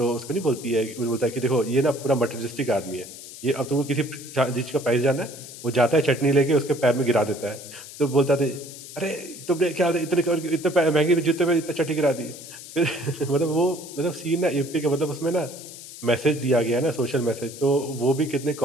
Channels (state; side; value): noise; left; hiss, 14 dB below the sound